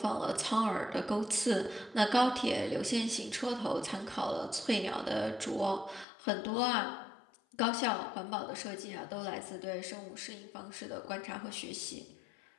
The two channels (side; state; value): right; drops out; at 6.1 s